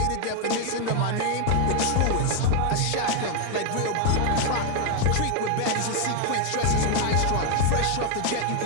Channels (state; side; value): different; both; correlation 0.00